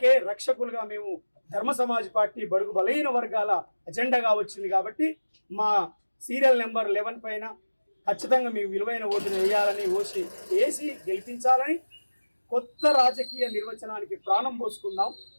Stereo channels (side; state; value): both; inverted; correlation -1.00